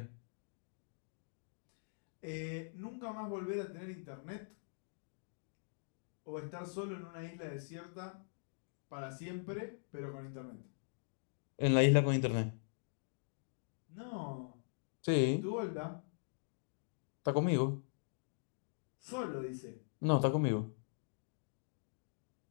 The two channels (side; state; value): right; silent; digital silence